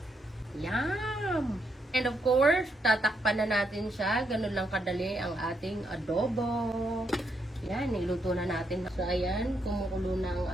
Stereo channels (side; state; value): both; normal; correlation 0.78